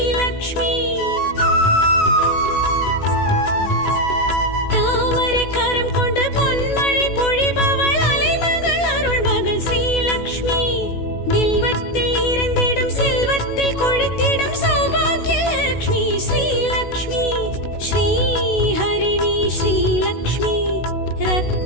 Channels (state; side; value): late; right; 16 ms